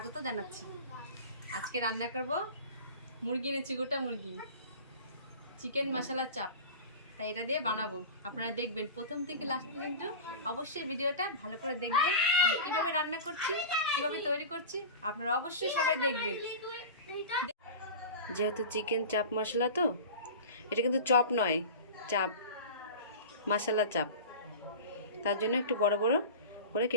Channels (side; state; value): both; inverted; correlation -0.32